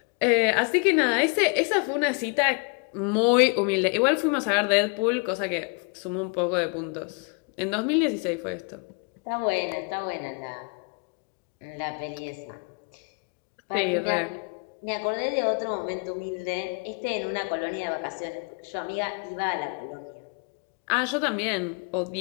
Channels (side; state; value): right; quieter; 35.0 dB